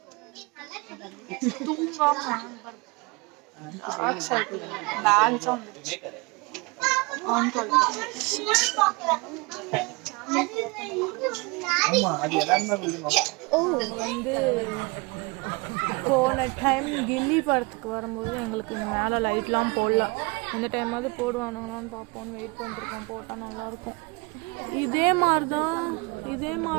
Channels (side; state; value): left; quieter; 27.3 dB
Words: வந்து போன டைம் கில்லி படத்துக்கு வரும்போது எங்களுக்கு இந்த மேலே லைட்லாம் போடல. இந்த டைமாவது போடுவானுங்களான்னு பார்ப்போன்னு வெயிட் பண்ணிருக்கோம். போட்டால் நல்லாயிருக்கும். இதே மாதிரி